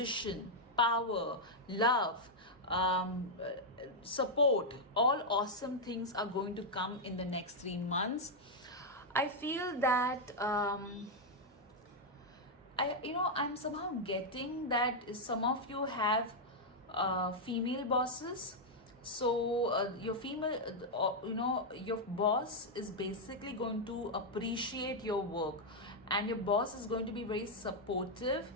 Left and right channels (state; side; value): normal; both; correlation -0.02